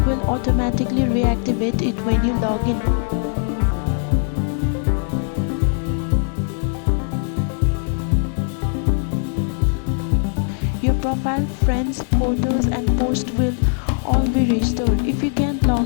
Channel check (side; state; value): right; silent; 55 dB below the other